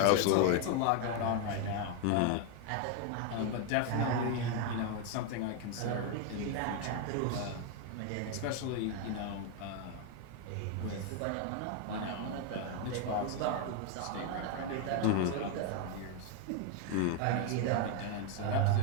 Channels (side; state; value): both; different; correlation 0.01